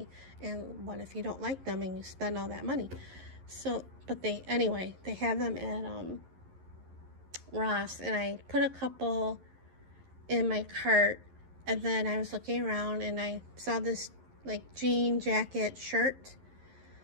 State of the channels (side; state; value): left; late; 11 ms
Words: And what if you don't like them and you spend all that money? So, but they have them at Ross, and I put a couple in my cart, and then I was looking around and I saw this like jean jacket shirt,